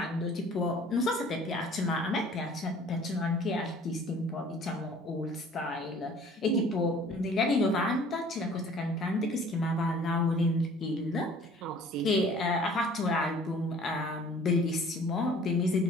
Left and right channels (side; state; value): both; normal; correlation 0.51